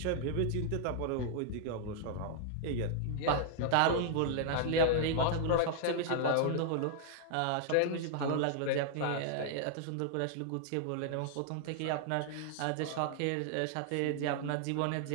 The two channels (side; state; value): both; different; correlation 0.00